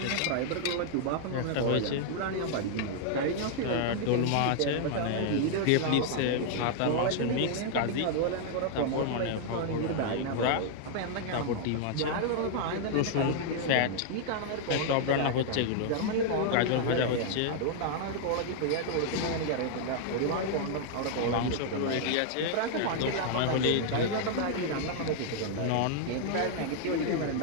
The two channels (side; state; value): both; different; correlation 0.00